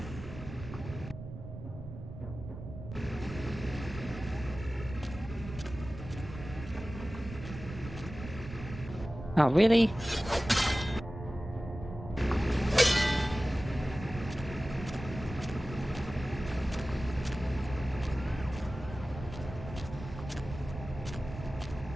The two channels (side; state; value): right; noise; rumble, 11 dB below the sound